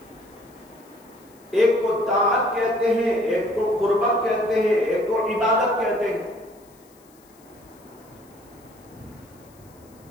ایک کو طاعت کہتے ہیں، ایک کو قربت کہتے ہیں، ایک کو عبادت کہتے ہیں.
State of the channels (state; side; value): noise; left; hiss, 29 dB below the sound